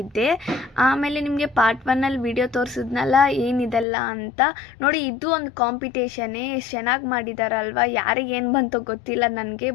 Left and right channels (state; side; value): drops out; right; at 3.9 s